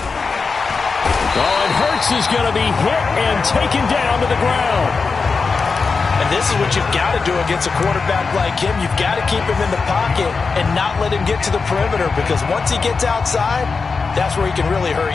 and Hurts is going to be hit and taken down to the ground. And this is what you've got to do against a quarterback like him. You've got to keep him in the pocket and not let him get to the perimeter, because once he gets outside, that's where he can really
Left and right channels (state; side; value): quieter; right; 4.7 dB